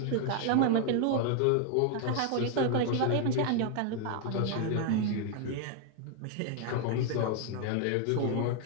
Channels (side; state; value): both; different; correlation 0.00